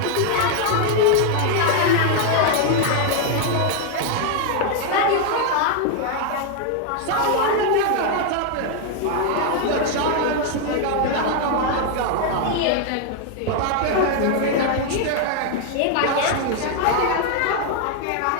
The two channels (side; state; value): both; different; correlation 0.00